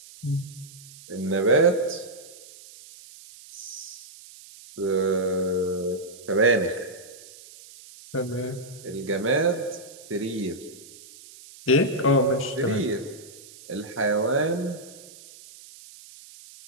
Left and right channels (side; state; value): right; noise; hiss, 19 dB below the sound